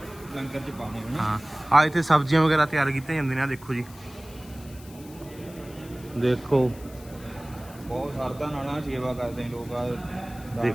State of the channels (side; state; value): left; noise; hiss, 21 dB below the sound